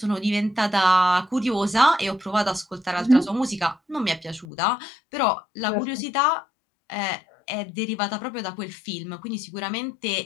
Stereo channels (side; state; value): right; drops out; at 4.5 s